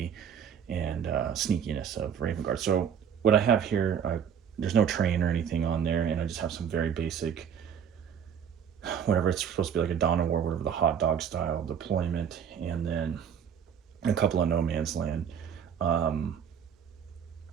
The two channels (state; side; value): quieter; left; 8.1 dB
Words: and sneakiness of Raven Guard. So what I have here, there's no train or anything on there, and I just have some very basic, whatever it's supposed to be, like a Dawn of War, whatever, the hot dog style deployment, and then a couple of no man's land um,